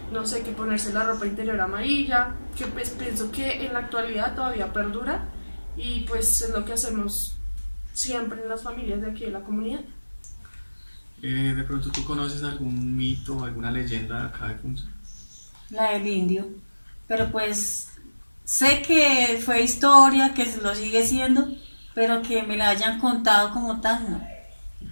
no sé, que ponerse la ropa interior amarilla, que pues pienso que en la actualidad todavía perdura y pues es lo que hacemos siempre en las familias de aquí de la comunidad. De pronto tú conoces algún mito, alguna leyenda de acá de Funza. La del indio. Pero pues sé que fue historia, que lo sigue siendo, pero que me la hayan contado como tal, no. ¿Y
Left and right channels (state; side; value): inverted; both; correlation -1.00